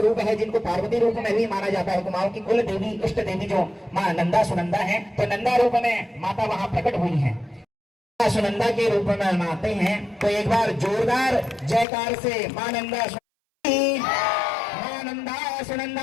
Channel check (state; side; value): drops out; right; at 11.9 s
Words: है, जिनको पार्वती रूप में भी माना जाता है, कुमाऊं की कुल देवी इष्ट देवी जो मां नंदा सुनंदा है, तो नंदा रूप में माता वहां प्रकट हुई है, सुनंदा के रूप में मानते हैं। तो एक बार जोरदार जयकार से मां नंदा की, मां नंदा